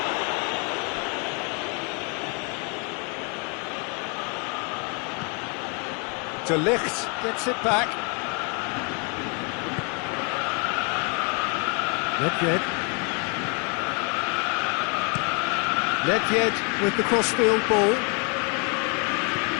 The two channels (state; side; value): quieter; right; 35.7 dB